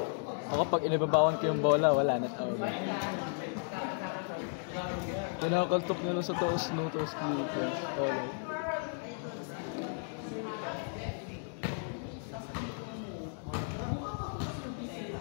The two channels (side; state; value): right; silent; 55 dB below the other